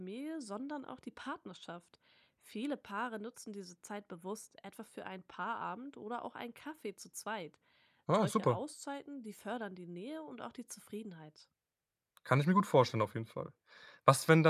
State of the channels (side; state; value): both; identical; correlation 1.00